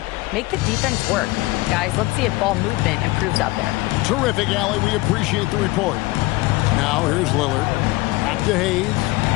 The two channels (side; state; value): right; quieter; 21.4 dB